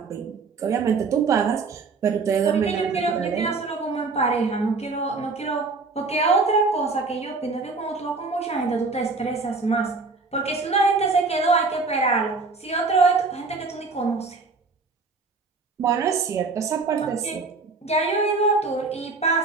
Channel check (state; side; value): quieter; left; 4.1 dB